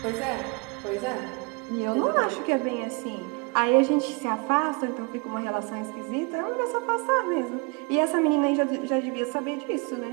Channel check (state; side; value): quieter; left; 30.7 dB